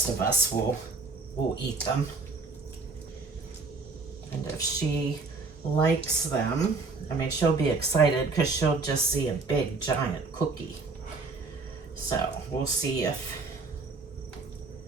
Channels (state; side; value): quieter; left; 4.0 dB